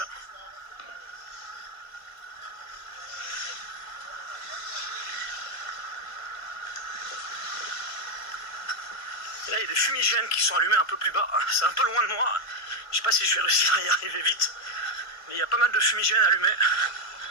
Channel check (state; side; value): late; right; 1.4 ms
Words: Et là, il y a des fumigènes qui sont allumés un peu plus bas. C'est un peu loin de moi. Je sais pas si je vais réussir à y arriver vite. Mais il y a pas mal de fumigènes allumés.